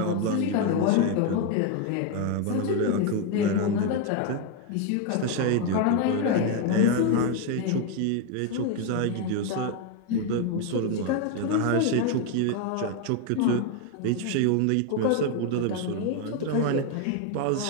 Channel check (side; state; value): both; different; correlation 0.01